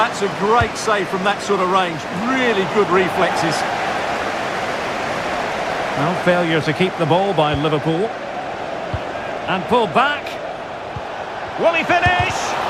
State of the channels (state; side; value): identical; both; correlation 1.00